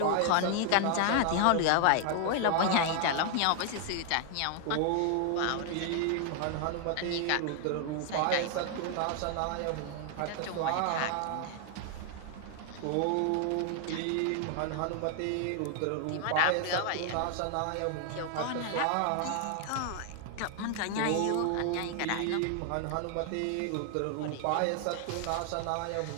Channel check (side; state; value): both; different; correlation 0.00